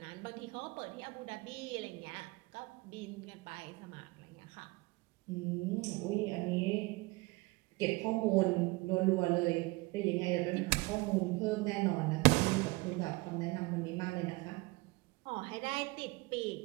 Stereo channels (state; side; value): quieter; left; 23.4 dB